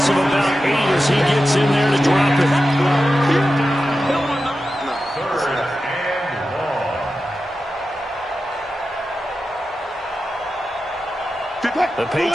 of about 8 as he gets in there to drop it. The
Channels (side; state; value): both; normal; correlation 0.92